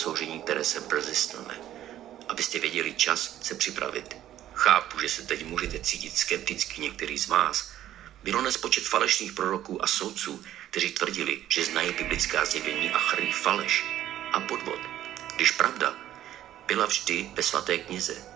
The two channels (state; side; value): quieter; left; 12.4 dB